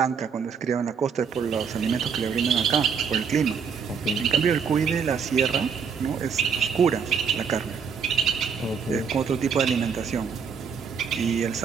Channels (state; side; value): quieter; left; 6.5 dB